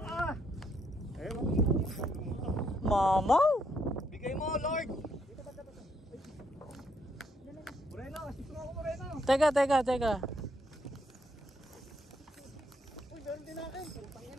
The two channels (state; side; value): normal; both; correlation 0.74